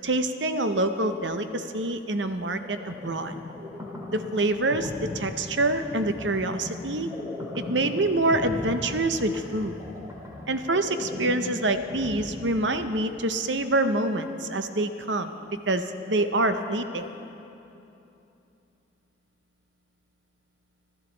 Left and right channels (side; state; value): both; normal; correlation 0.12